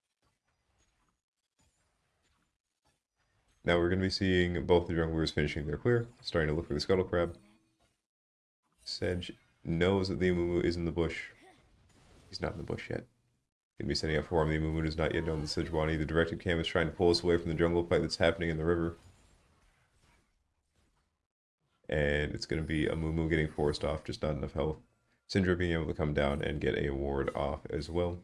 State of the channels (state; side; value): identical; both; correlation 1.00